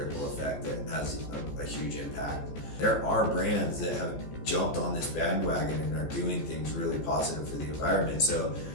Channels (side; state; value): right; late; 14 ms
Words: effect that has a huge impact. There are brands that have jumped on this bandwagon and are doing things really positive for the environment. So